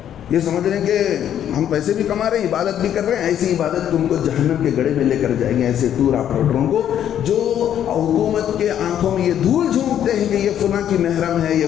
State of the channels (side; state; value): right; quieter; 10.2 dB